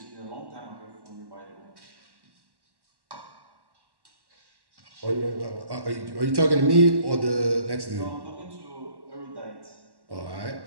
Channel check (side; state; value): left; late; 1.1 ms